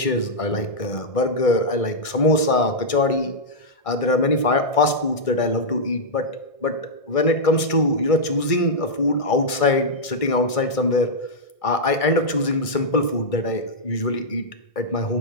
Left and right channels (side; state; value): right; late; 1.6 ms